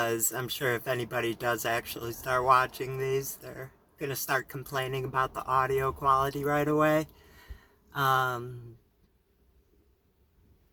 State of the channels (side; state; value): both; identical; correlation 1.00